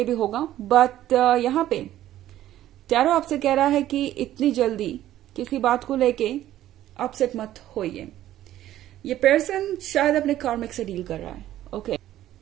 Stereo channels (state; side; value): quieter; left; 13.2 dB